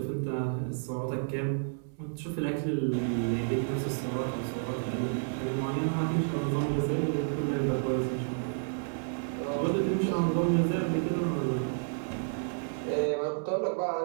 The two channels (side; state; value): left; silent; 57 dB below the other